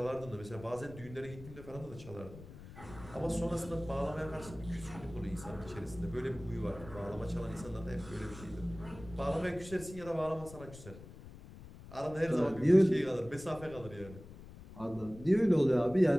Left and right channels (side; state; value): left; noise; rumble, 16 dB below the sound